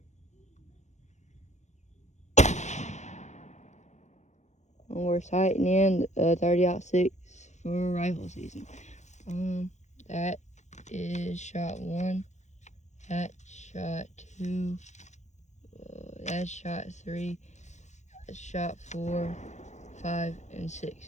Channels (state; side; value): late; right; 0.34 ms